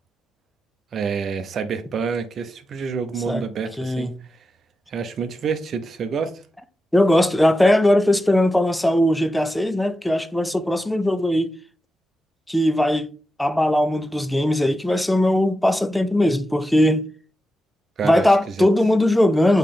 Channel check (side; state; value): both; normal; correlation 0.90